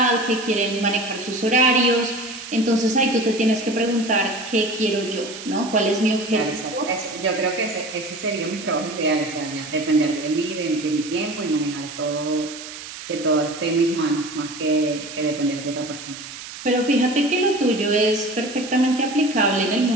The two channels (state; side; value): noise; right; hiss, 12 dB below the sound